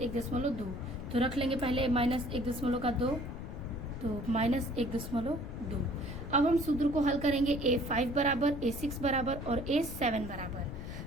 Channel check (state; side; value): noise; left; rumble, 8 dB below the sound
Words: तो रख लेंगे पहले -1.2, तो -1.2। अब हम सूत्र को हल करेंगे A5 बराबर, A6 बराबर और A7 बराबर,